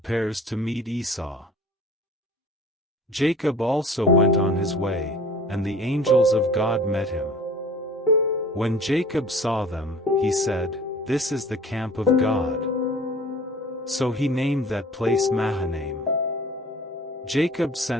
to meet Esau. Jacob also went on his way, and the angels of God met him. When Jacob saw them, he said, "This is the camp of God." So he named that place Mahanaim. Jacob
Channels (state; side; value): normal; both; correlation 0.46